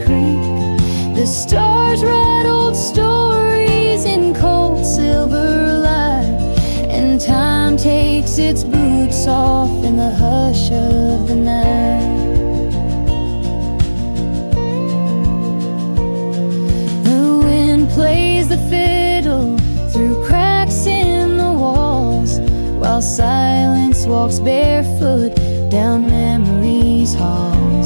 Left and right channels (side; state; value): both; inverted; correlation -1.00